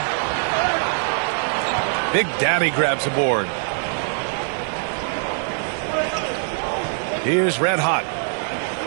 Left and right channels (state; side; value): silent; left; digital silence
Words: Big Daddy grabs the board. Here's Red Hot.